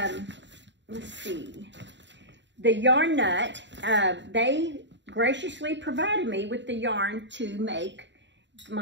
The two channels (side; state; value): left; late; 0.52 ms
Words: see, the yarn nut. They graciously provided me with the yarn to make